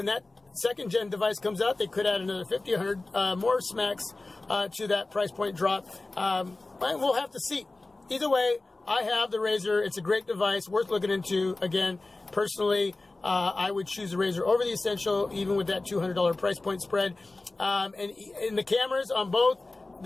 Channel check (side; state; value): right; quieter; 3.2 dB